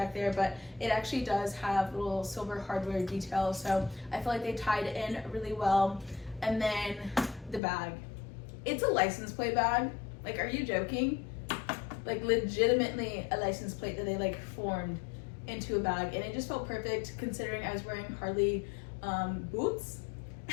there, but it actually does have little silver hardware details, so I feel like they tied in really well. And then the bag, it's a license plate bag. Like, are you joking? Like legitimately a license plate that they like formed into a bag, and it just felt perfect considering I was wearing Harley boots.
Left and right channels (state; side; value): drops out; right; at 7.6 s